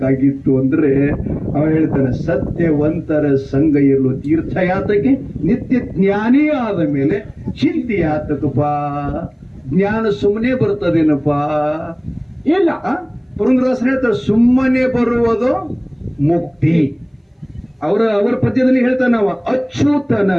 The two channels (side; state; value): both; identical; correlation 1.00